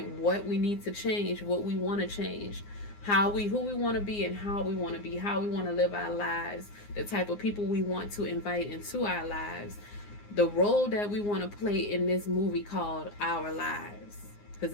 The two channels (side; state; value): right; late; 9.7 ms